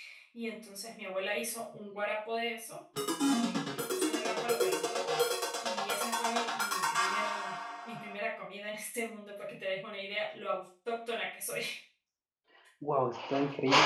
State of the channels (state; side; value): identical; both; correlation 1.00